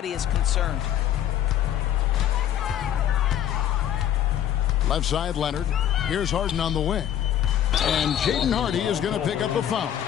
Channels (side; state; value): right; quieter; 10.7 dB